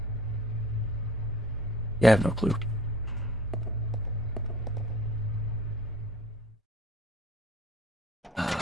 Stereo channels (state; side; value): normal; both; correlation 0.48